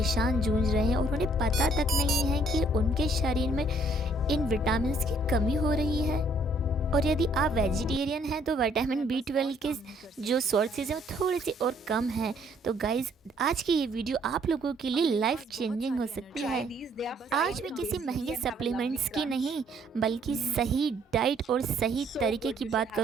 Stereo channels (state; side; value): normal; both; correlation 0.64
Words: जूझ रहे हैं और उन्हें पता तक नहीं है कि उनके शरीर में इन विटामिन की कमी हो रही है। और यदि आप वेजिटेरियन हैं तो विटामिन बी 12 के जो सोर्सेज हैं वो थोड़े से और कम हैं। तो गाइज़, आज की ये वीडियो आप लोगों के लिए लाइफ चेंजिंग हो सकती है। आज मैं किसी महंगे सप्लीमेंट्स की नहीं, बल्कि सही डाइट और सही तरीके की बात